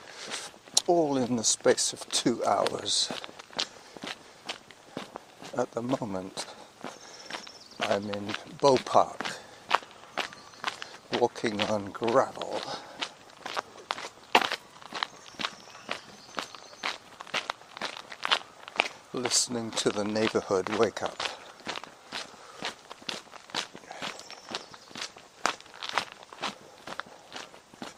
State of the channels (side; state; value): both; identical; correlation 1.00